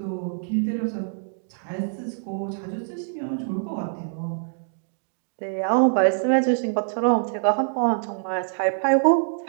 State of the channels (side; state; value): left; silent; digital silence